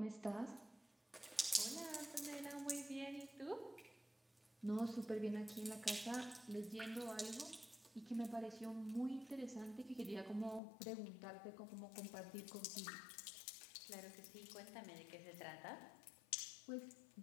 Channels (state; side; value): drops out; right; at 10.6 s